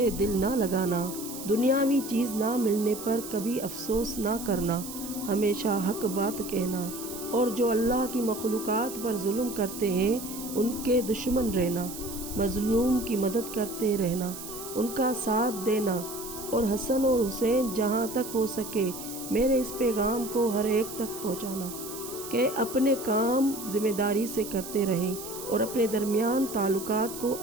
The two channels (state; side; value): noise; right; hiss, 11 dB below the sound